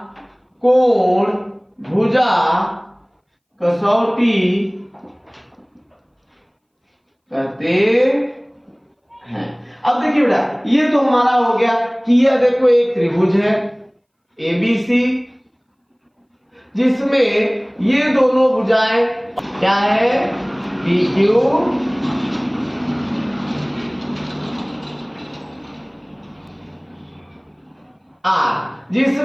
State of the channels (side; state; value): both; identical; correlation 1.00